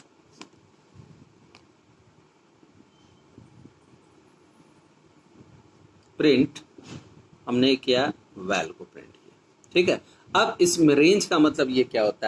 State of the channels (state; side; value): identical; both; correlation 1.00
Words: हमने किया वैल को प्रिंट किया, ठीक है। अब इसमें रेंज का मतलब ये क्या